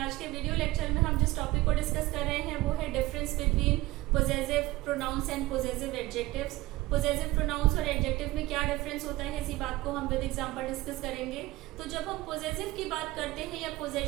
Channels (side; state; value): left; quieter; 18.9 dB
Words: आज के video lecture में हम जिस टॉपिक को डिस्कस कर रहे हैं वो है difference between possessive pronouns and possessive adjectives. Possessive pronouns और एडजेक्टिव में क्या डिफरेंस होता है, इसी बात को हम विद एग्जांपल डिस्कस करेंगे। तो जब हम पोजेसिव की बात करते हैं या